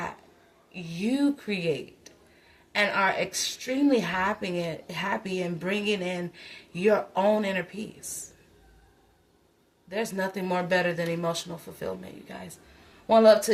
you create and are extremely happy in bringing in your own inner peace. There's nothing more better than emotional fulfillment, you guys. One love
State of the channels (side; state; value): both; identical; correlation 1.00